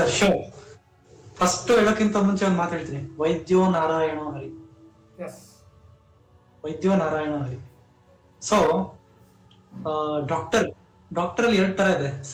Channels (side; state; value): both; identical; correlation 1.00